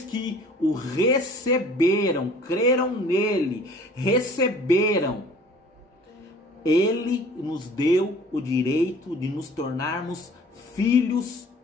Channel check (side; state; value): both; normal; correlation 0.50